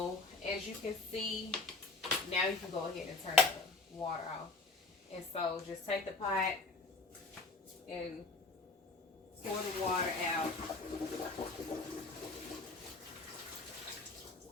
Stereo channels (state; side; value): quieter; right; 3.6 dB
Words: as you can see, now you can go ahead and turn the water off. And so just take the pot and pour the water out.